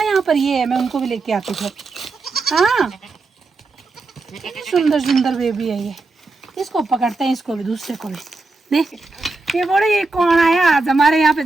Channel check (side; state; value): left; quieter; 3.6 dB